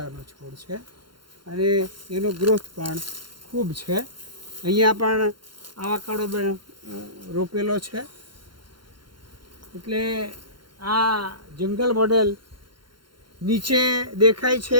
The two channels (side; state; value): left; late; 0.72 ms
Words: છોડ છે અને એનો ગ્રોથ પણ ખૂબ છે. અહીંયા પણ આવાકાડો રોપેલો છે. એટલે આ જંગલ મોડેલ નીચે દેખાય